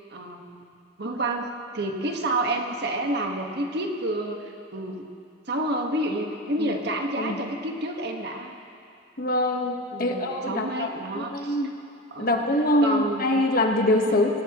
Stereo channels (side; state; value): both; normal; correlation 0.25